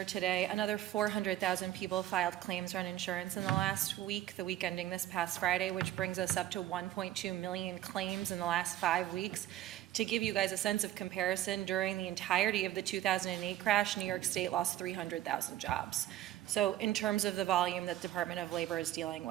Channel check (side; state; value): left; quieter; 13.5 dB